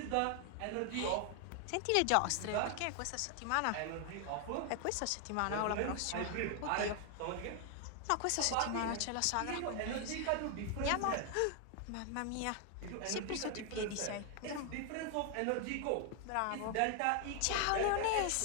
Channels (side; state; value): both; different; correlation 0.00